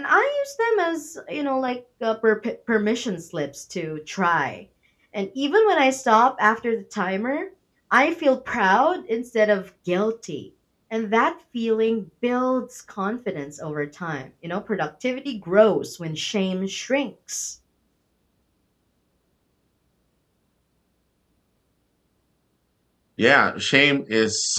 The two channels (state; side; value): identical; both; correlation 1.00